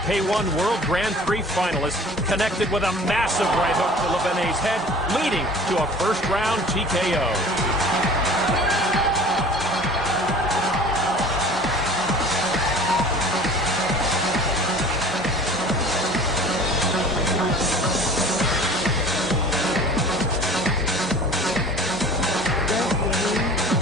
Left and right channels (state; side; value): normal; both; correlation 0.45